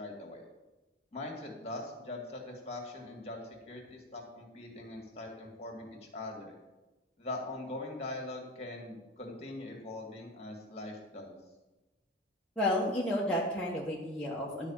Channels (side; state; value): both; normal; correlation 0.28